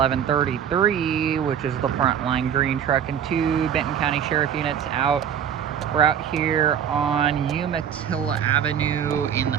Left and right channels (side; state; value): left; quieter; 8.7 dB